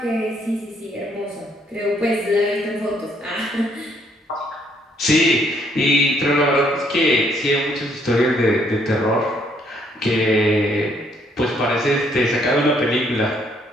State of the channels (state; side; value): normal; both; correlation 0.68